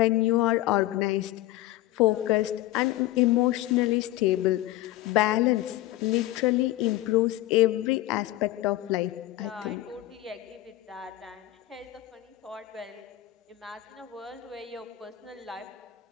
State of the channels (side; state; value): right; quieter; 16.0 dB